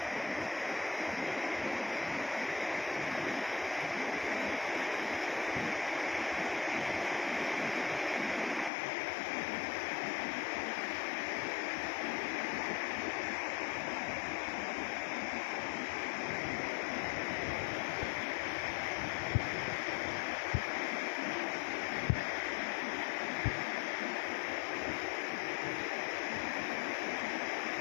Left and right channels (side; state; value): right; drops out; at 8.7 s